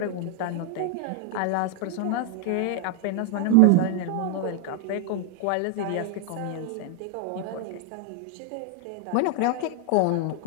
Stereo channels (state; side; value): different; both; correlation 0.00